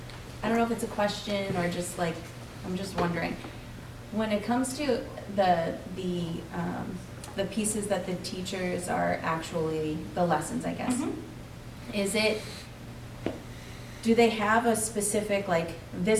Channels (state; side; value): identical; both; correlation 1.00